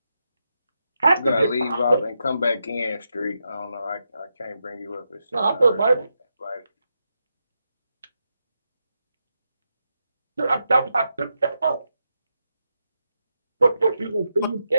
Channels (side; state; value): both; inverted; correlation -0.86